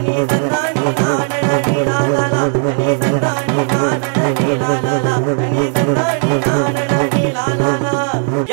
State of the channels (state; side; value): silent; left; 61 dB below the other